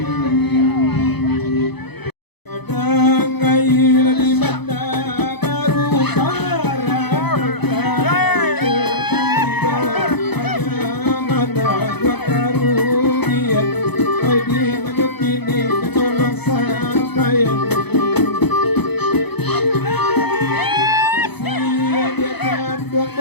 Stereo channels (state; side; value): late; right; 0.98 ms